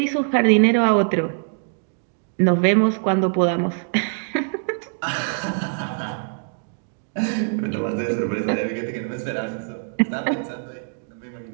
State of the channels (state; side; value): silent; left; digital silence